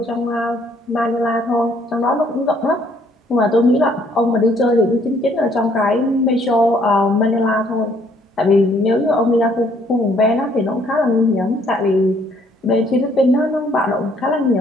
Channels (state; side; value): normal; both; correlation 0.65